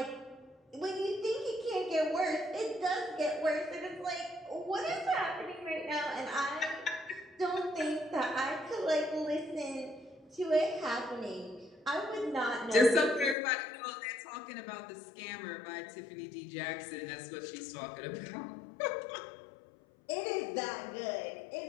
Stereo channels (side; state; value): right; drops out; at 13.4 s